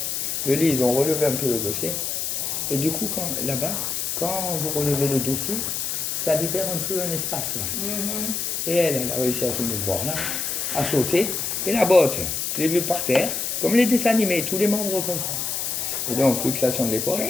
Le lit, ils ont relevé un peu le dossier. Et du coup, là-bas, quand vous relevez le dossier, ça libère un peu un espace là. Et elle a réussi à se mouvoir là, à sauter. Et la botte, je l'ai vue par terre, comme les dessins animés, tous les membres comme ça. Et donc, luxation de l'épaule.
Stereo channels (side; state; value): left; noise; hiss, 2 dB below the sound